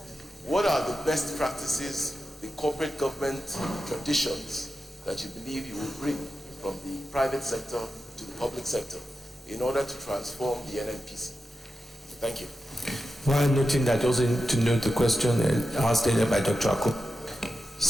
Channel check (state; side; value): normal; both; correlation 0.91